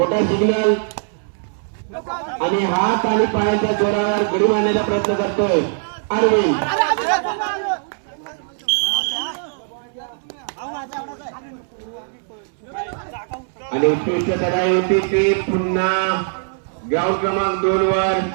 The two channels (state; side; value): silent; left; 65 dB below the other